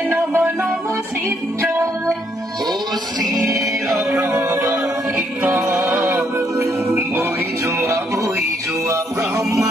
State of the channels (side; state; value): both; normal; correlation 0.72